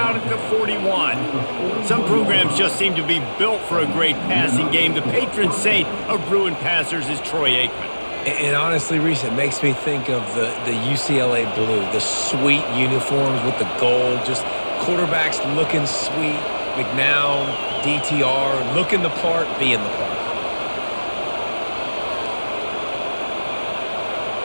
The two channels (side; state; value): both; inverted; correlation -1.00